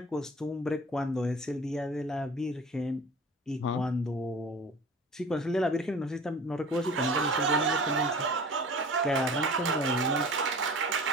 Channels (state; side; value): normal; both; correlation 0.41